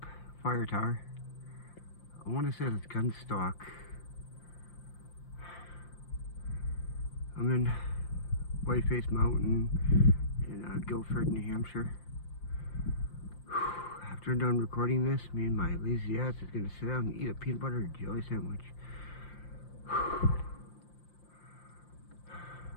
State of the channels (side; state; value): right; late; 5.7 ms